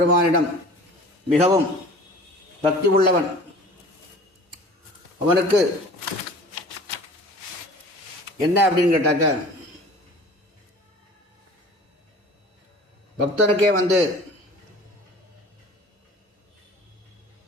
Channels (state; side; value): normal; both; correlation 0.44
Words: மிகவும் பக்தி உள்ளவன். அவனுக்கு என்ன அப்படின்னு கேட்டாக்க, பக்தனுக்கே வந்து